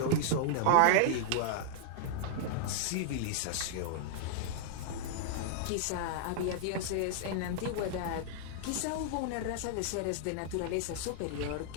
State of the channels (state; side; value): different; both; correlation -0.01